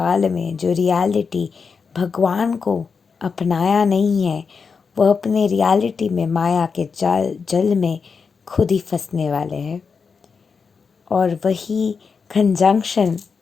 में जो रियलिटी भगवान को अपनाया नहीं है, वो अपने रियलिटी में माया के जल में खुद ही फंसने वाले हैं। और वही कंजंक्शन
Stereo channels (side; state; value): right; quieter; 5.4 dB